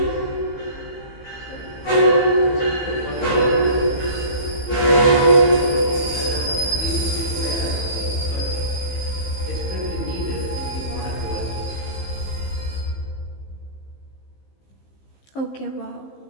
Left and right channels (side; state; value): right; late; 15 ms